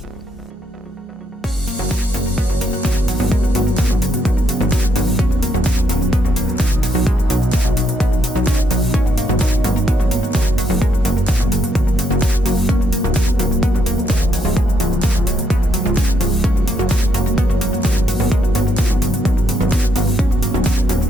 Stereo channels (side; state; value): both; normal; correlation 0.76